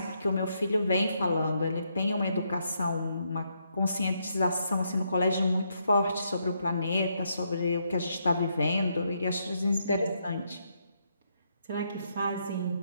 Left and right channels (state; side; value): inverted; both; correlation -0.77